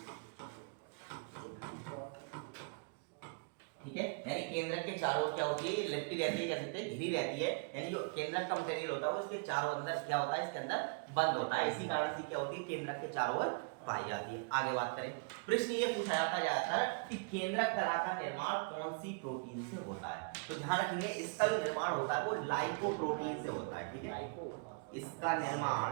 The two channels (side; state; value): left; quieter; 38.7 dB